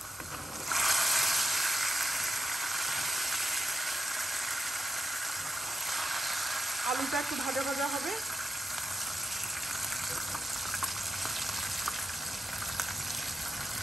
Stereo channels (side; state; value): both; normal; correlation 0.87